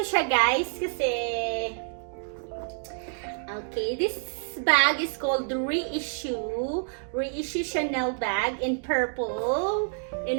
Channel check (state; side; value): silent; left; digital silence